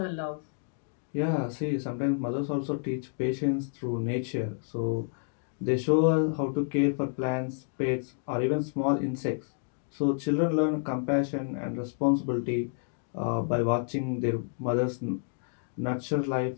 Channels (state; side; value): silent; right; digital silence